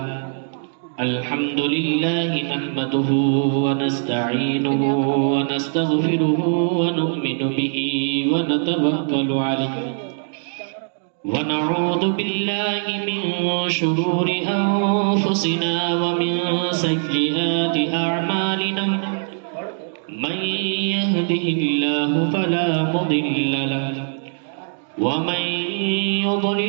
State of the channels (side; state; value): left; silent; 65 dB below the other